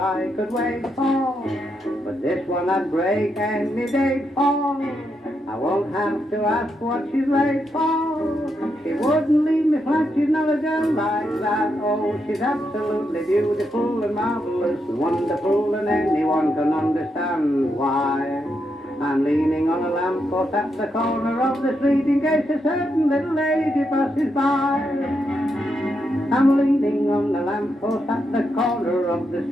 could wait for, but this one I'd break any day for. I won't have to ask what she's late for. She wouldn't leave me flat, she's not a girl like that. Oh, she's absolutely beautiful and marvelous and wonderful, and anyone can understand why. I'm leaning on a lamppost at the corner of the street in case a certain little lady passes by. I'm leaning on the lamppost at the corner of the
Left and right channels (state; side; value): normal; both; correlation 0.82